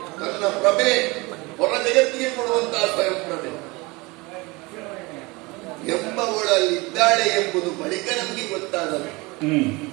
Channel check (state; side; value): quieter; left; 24.4 dB